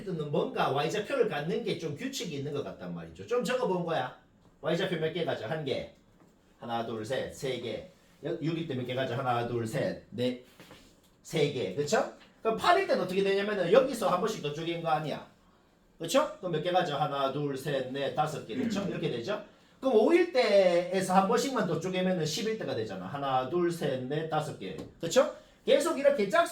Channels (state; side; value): identical; both; correlation 1.00